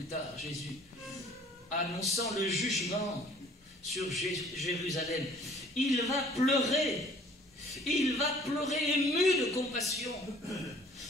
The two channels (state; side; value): normal; both; correlation 0.54